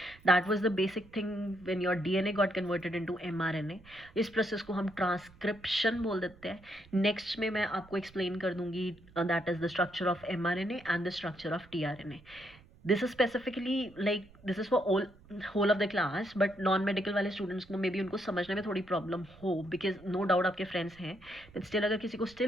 That was the basic thing when your DNA got converted into mRNA. इस प्रोसेस को हम ट्रांसक्रिप्शन बोल देते हैं। नेक्स्ट में मैं आपको एक्सप्लेन कर दूंगी that is the structure of mRNA and the structure of tRNA. This is specifically like this is for whole of the class, but non medical वाले स्टूडेंट्स को मे बी उनको समझने में थोड़ी प्रॉब्लम हो, बिकॉज नो डाउट आपके friends हैं, but still अगर किसी को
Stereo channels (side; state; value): right; noise; rumble, 24 dB below the sound